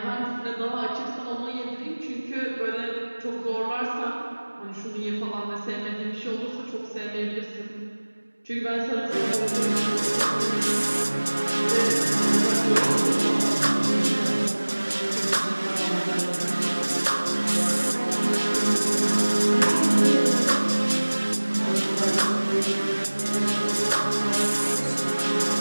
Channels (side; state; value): both; inverted; correlation -1.00